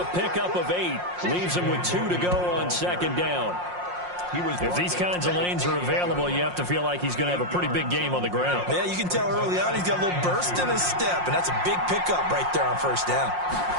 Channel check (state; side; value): late; left; 5.6 ms